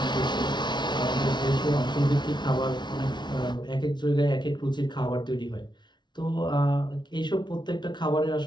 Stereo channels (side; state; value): right; late; 0.21 ms